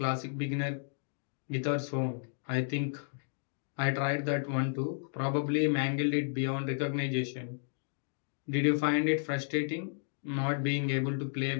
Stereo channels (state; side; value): silent; right; digital silence